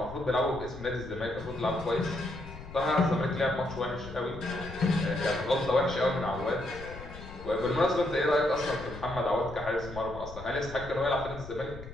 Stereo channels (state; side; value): noise; left; rumble, 13 dB below the sound